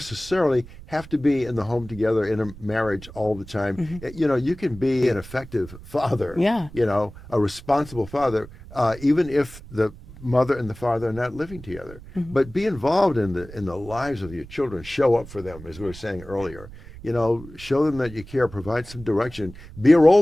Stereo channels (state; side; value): noise; right; rumble, 17 dB below the sound